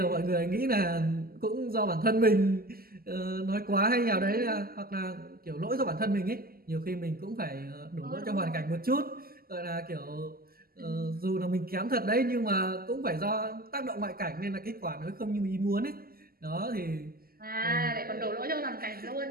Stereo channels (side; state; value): left; late; 0.43 ms